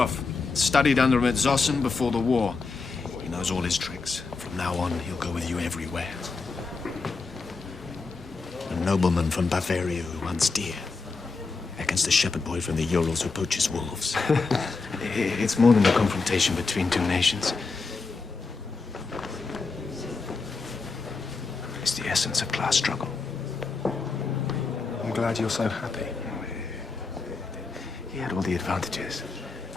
studied under him at Zossen before the war. He knows all his tricks. From now on, he'll go with you everywhere. A nobleman from Bavaria who hunts deer against a shepherd boy from the Urals who poaches wolves. It's more than a confrontation between two nations. It's the essence of class struggle. I'm glad you're so happy. He had all the advantages.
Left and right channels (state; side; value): quieter; right; 4.2 dB